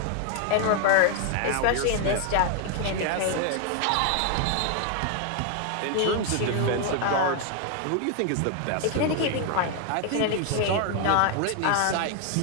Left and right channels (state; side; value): different; both; correlation 0.00